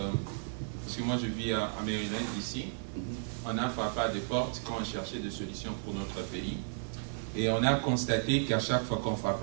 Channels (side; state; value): left; silent; digital silence